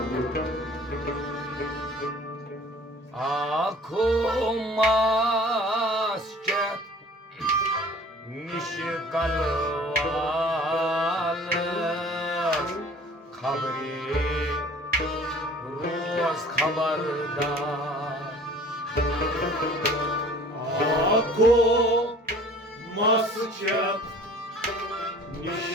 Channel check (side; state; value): both; normal; correlation 0.49